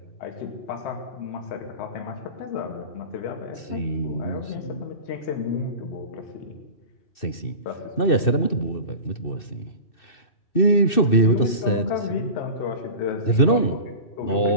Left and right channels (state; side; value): late; right; 2.6 ms